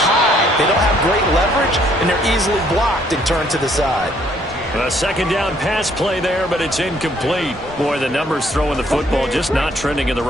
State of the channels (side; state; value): both; normal; correlation 0.65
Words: They don't have great leverage, and they're easily blocked and turned to the side. A 2nd down pass play there, but it's incomplete. Boy, the numbers throwing the football just not trending in the